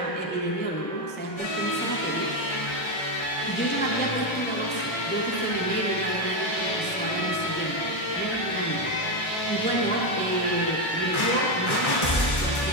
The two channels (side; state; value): right; late; 1.3 ms